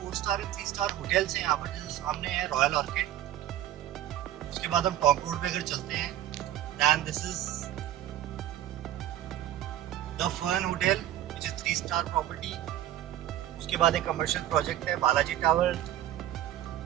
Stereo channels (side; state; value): left; quieter; 12.4 dB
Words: star and 3 star hotels हैं यहाँ पर। जैसे सामने है रॉयल ऑर्किड, उसके बाद हम टॉन्ग रोड पे अगर चलते हैं, then this is the Fern hotel which is 3 star property. उसके बाद एक कमर्शियल प्रोजेक्ट है Balaji tower.